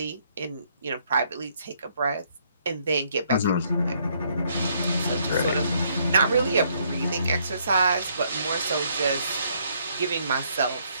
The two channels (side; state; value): both; inverted; correlation -0.69